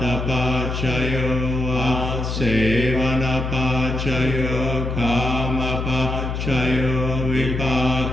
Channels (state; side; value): noise; left; hum, 3 dB below the sound